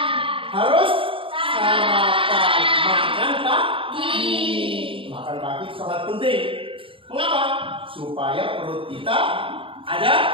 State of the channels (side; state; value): left; late; 0.26 ms